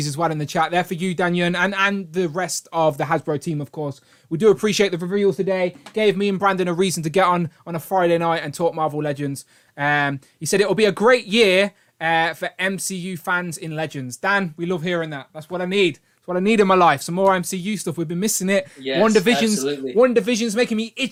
as well in the chat. They're for you, Danyon, and the rest of the Hasbro team, of course. We do appreciate the reveals today. Gave me and Brandon a reason to get on a Friday night and talk Marvel Legends. He said it'll be a great year for MCU fans in Legends. Dan, we love hearing that. That's what I need. That's what I need in my life. Some more MCU stuff. We've been missing it. Yes, One Division's making me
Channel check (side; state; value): both; identical; correlation 1.00